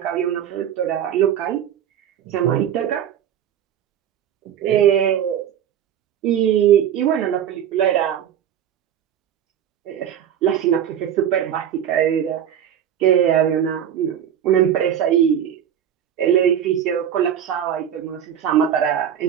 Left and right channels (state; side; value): quieter; left; 9.6 dB